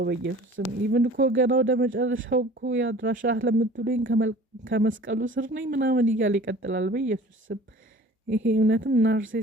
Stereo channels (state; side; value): normal; both; correlation 0.46